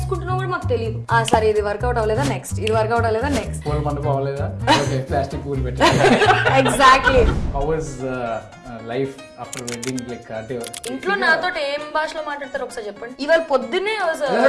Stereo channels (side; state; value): both; identical; correlation 1.00